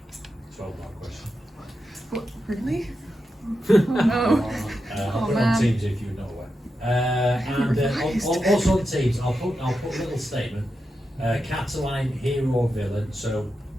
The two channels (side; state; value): both; normal; correlation 0.88